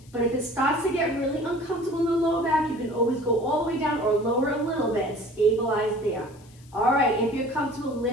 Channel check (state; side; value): noise; left; hiss, 28 dB below the sound